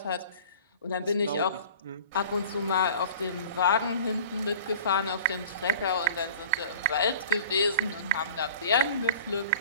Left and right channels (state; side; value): inverted; both; correlation -0.43